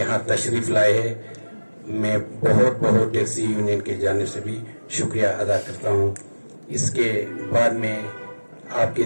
तशरीफ लाए है। मैं बहुत टैक्सी यूनियन की जानिब से भी शुक्रिया अदा करता हूँ। इसके बाद में आपके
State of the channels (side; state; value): both; inverted; correlation -1.00